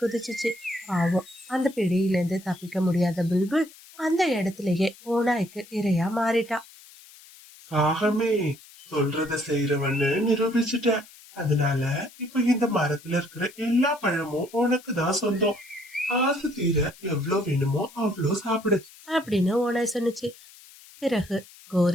குதிச்சுச்சு. பாவம், அந்த பிடியில இருந்து தப்பிக்க முடியாத புல்புல் அந்த இடத்துலயே ஓநாய்க்கு இரையா மாறிட்டா. காகமே, சொல்றத செய்யறவன்னு நிரூபிச்சுட்ட. அதனால இப்ப இந்த மரத்துல இருக்கிற எல்லா பழமும் உனக்கு தான் சொந்தம். ஆசை தீர எவ்வளவு வேணுமோ அவ்வளோ சாப்பிடு அப்படின்னு ஓனாய் சொன்னுச்சு. பிறகு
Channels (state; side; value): noise; left; hiss, 22 dB below the sound